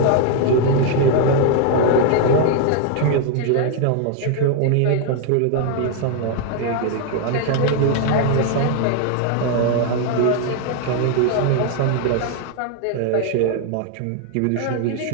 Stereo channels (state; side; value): different; both; correlation 0.00